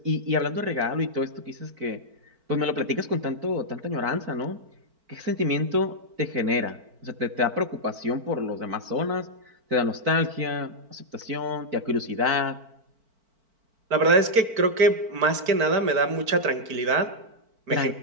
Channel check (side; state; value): left; late; 4.5 ms